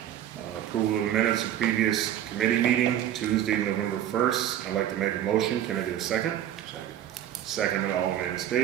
Approval of the minutes of previous committee meeting, Tuesday, November 1st. I'd like to make a motion. Can I get a second? Second by Alderman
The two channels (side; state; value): left; quieter; 11.3 dB